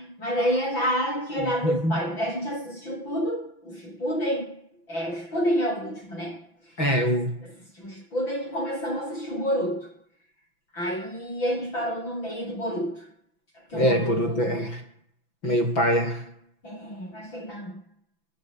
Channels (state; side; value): late; right; 6.0 ms